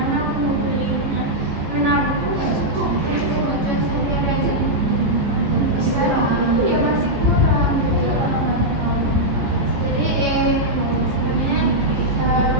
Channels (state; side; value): late; left; 14 ms